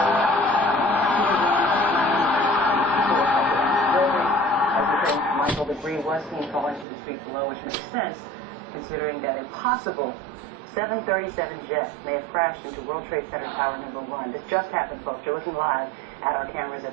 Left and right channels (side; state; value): left; drops out; at 6.9 s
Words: Michael, debris was seen falling to the street below, which makes sense considering that a possible 737 jet may have crashed into World Trade Center Tower number 1. This just happened, folks. You're looking live at our cameras